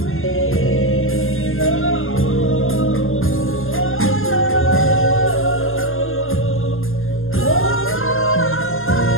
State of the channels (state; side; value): late; right; 0.60 ms